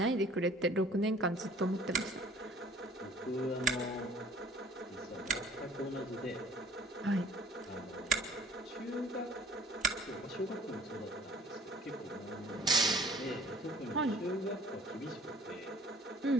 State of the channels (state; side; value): normal; both; correlation 0.52